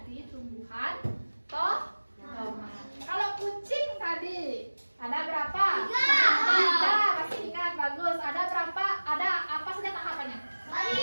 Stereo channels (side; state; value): both; inverted; correlation -1.00